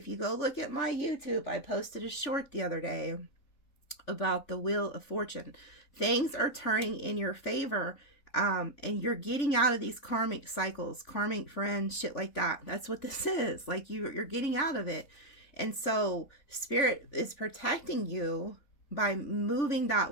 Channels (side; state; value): right; late; 3.5 ms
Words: you go look at my YouTube, I posted a short the other day about the Wheel of Fortune. Things are turning in your favor, and you're getting out of these karmic cycles, karmic friends, shit like that. That's what this is. Like, you're getting out of it. And so Spirit is protecting you by moving